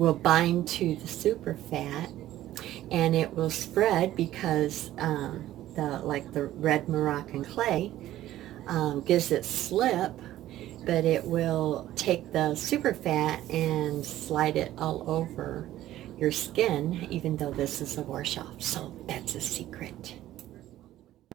bind to the super fat, and it will spread because the red Moroccan clay gives it slip, but it will take the super fat and slide it all over your skin, even though this is a wash off. So that's a secret.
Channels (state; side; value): quieter; left; 13.9 dB